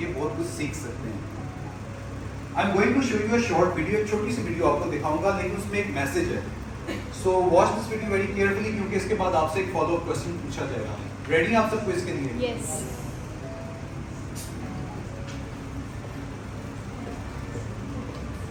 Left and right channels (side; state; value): both; identical; correlation 1.00